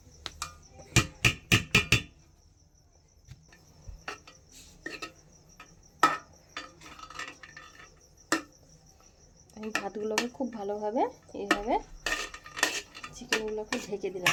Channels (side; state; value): both; identical; correlation 1.00